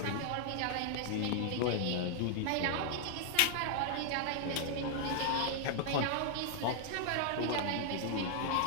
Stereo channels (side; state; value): both; different; correlation 0.00